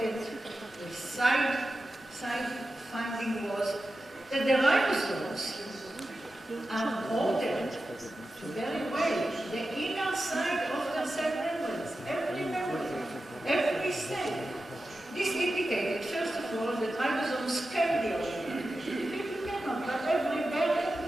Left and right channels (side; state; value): both; normal; correlation 0.92